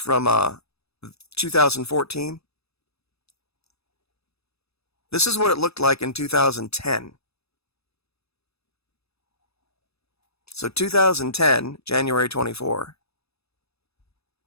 2014. This is what it looked like in 2010. So 2010, January 24.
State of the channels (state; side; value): late; right; 0.78 ms